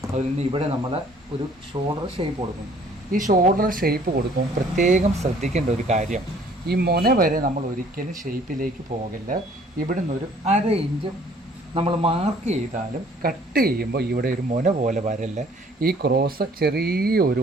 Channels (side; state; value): both; normal; correlation 0.57